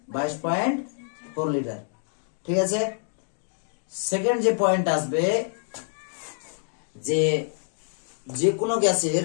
22.4 লিটার। ঠিক আছে, সেকেন্ড যে পয়েন্ট আসবে, যে যে কোনো গ্যাসের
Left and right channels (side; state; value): right; silent; digital silence